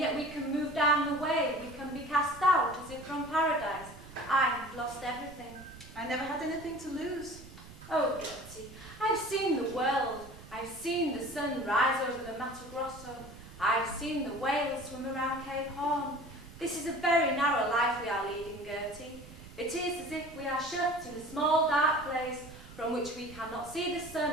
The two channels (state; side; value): noise; right; rumble, 17 dB below the sound